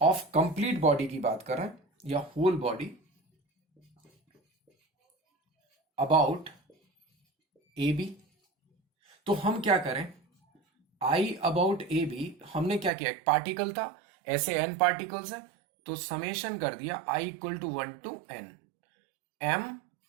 complete body की बात करें या whole body about A B, तो हम क्या करें, आई अबाउट ए बी हमने क्या किया, एक पार्टिकल था, ऐसे एन पार्टिकल्स है तो समेशन कर दिया I equal to 1 to n M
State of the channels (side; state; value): left; drops out; at 12.9 s